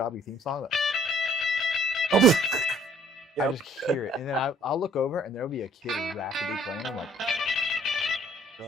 theme song. Oh. I just hear it, and then I'll look over, and there'll be a kid rapidly playing. I'm like, You're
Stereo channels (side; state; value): both; normal; correlation 0.59